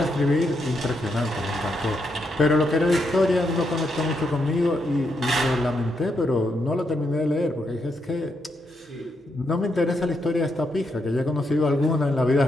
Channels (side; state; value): both; normal; correlation 0.80